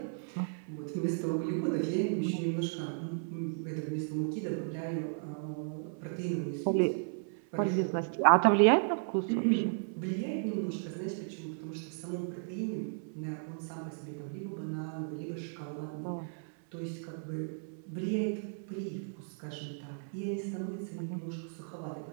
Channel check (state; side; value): silent; left; 55 dB below the other